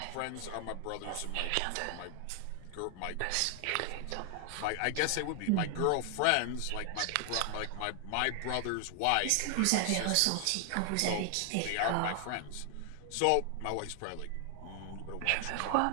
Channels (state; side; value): different; both; correlation 0.00